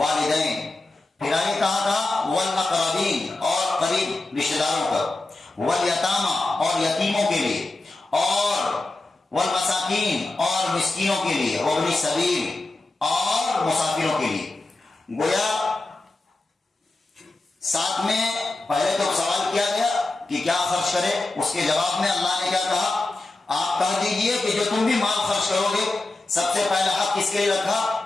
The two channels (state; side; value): quieter; right; 3.0 dB